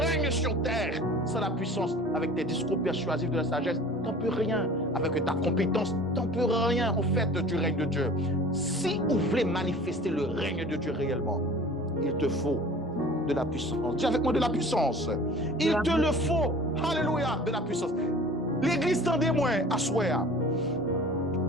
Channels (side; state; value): both; normal; correlation 0.43